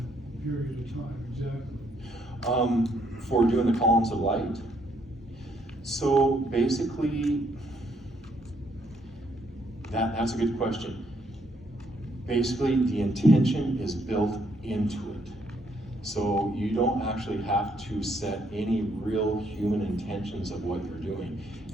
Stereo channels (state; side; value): normal; both; correlation 0.71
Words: period of time exactly? For doing the columns of light. So basically, that's a good question. Basically, the intention is built into it. So you don't actually have to set any real human intentions of what you're doing.